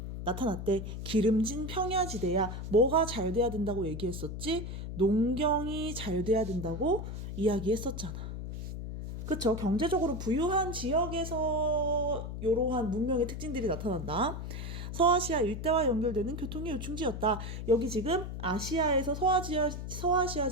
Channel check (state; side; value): noise; left; hum, 6 dB below the sound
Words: 나타났대. 기름진 평야지대야. 뭐가 잘 돼야 된다고 얘기했었지? 농경이 잘 돼야 된다고 이야기했었잖아. 그쵸? 경제적으로 부유한 지역에서 이러한 문명의 특징들이 나타난다. 서아시아 일대와 연결되는 교통의 요충지였다. 여기 지금 아시아에서 서아시아